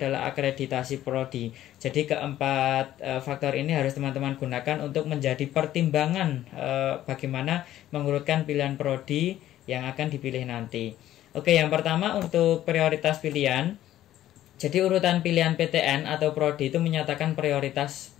akreditasi prodi. Jadi keempat faktor ini harus teman-teman gunakan untuk menjadi pertimbangan bagaimana mengurutkan pilihan prodi yang akan dipilih nanti. Oke, yang pertama untuk prioritas pilihan. Jadi urutan pilihan PTN atau prodi itu menyatakan prioritas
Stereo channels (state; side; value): quieter; right; 13.1 dB